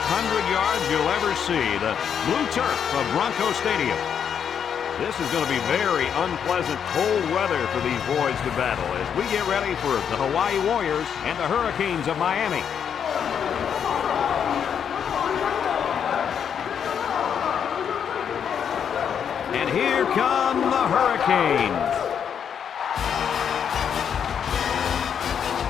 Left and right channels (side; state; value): right; quieter; 7.9 dB